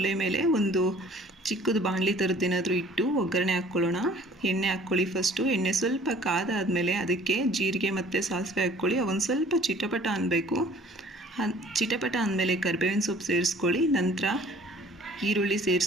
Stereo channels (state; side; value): normal; both; correlation 0.52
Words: ಮೇಲೆ ಒಂದು ಚಿಕ್ಕದು ಬಾಣಲಿ ಥರದ್ದೇನಾದರೂ ಇಟ್ಟು ಒಗ್ಗರಣೆ ಹಾಕ್ಕೊಳ್ಳೋಣ. ಎಣ್ಣೆ ಹಾಕ್ಕೊಳ್ಳಿ. ಫಸ್ಟು ಎಣ್ಣೆ ಸ್ವಲ್ಪ ಕಾದಾದಮೇಲೆ ಅದಕ್ಕೆ ಜೀರಿಗೆ ಮತ್ತು ಸಾಸಿವೆ ಹಾಕ್ಕೊಳ್ಳಿ. ಅವೊಂದು ಸ್ವಲ್ಪ ಚಿಟಪಟ ಅನ್ನಬೇಕು. ಚಿಟಪಟ ಅಂದಮೇಲೆ ಕರಿಬೇವಿನ ಸೊಪ್ಪು ಸೇರಿಸ್ಕೊಳ್ಳಿ. ನಂತರ ಈರುಳ್ಳಿ